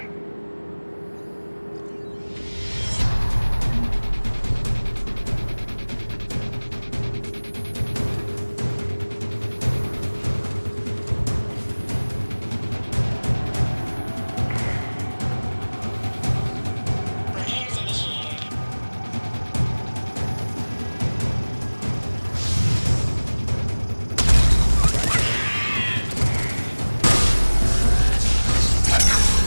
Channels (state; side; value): inverted; both; correlation -1.00